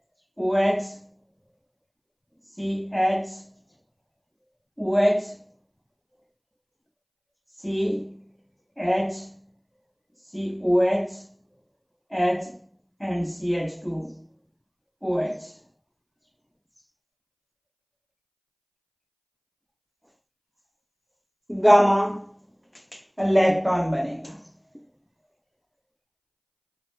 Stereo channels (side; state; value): both; identical; correlation 1.00